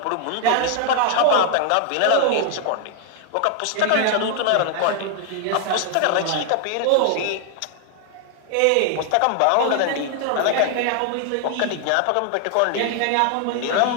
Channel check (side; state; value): both; different; correlation 0.00